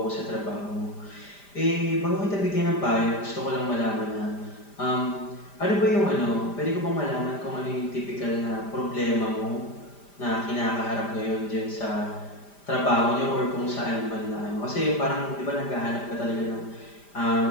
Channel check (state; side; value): late; right; 5.0 ms